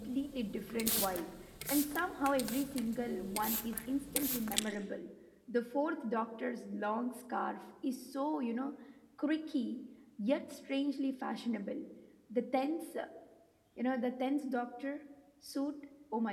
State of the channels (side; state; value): both; identical; correlation 1.00